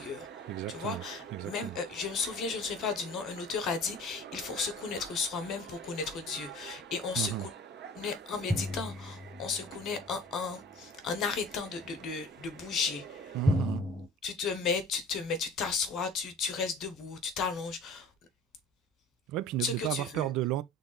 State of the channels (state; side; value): normal; both; correlation 0.44